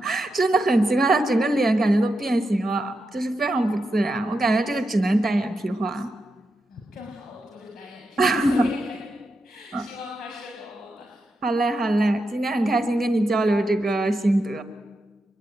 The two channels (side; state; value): both; normal; correlation 0.87